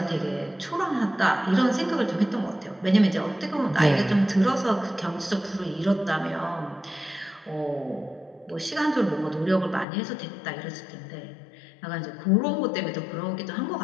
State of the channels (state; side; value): drops out; right; at 9.9 s